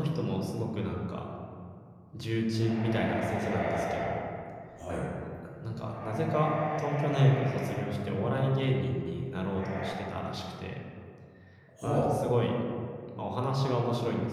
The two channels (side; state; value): both; identical; correlation 1.00